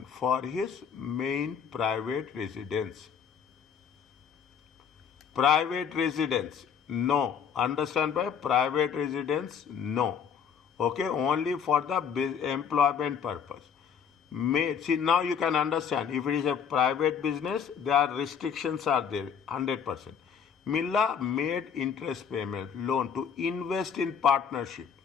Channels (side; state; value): right; quieter; 7.4 dB